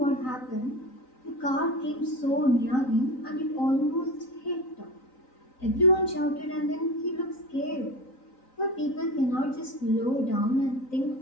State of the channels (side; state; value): right; late; 3.9 ms